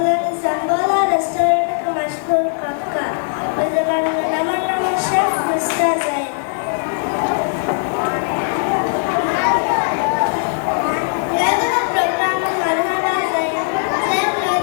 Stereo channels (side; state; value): right; silent; digital silence